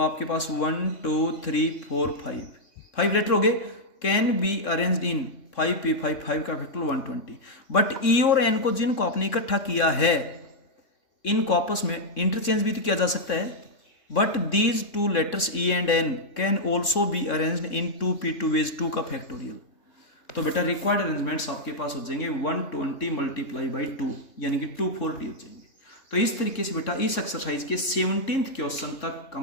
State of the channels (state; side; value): late; right; 3.6 ms